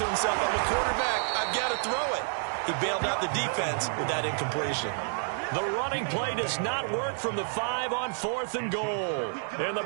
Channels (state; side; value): silent; left; 58 dB below the other